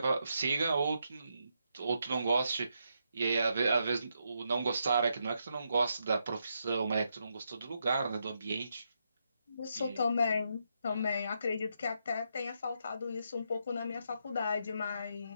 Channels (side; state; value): both; inverted; correlation -0.81